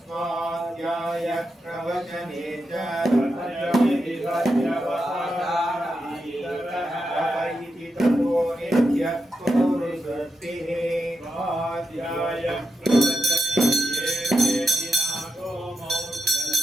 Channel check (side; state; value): both; normal; correlation 0.86